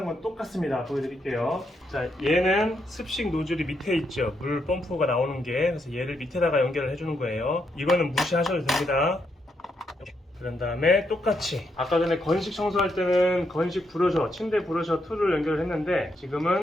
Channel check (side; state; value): both; normal; correlation 0.79